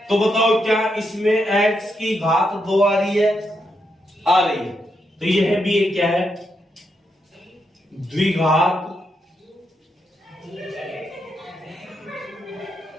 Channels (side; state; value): both; normal; correlation 0.82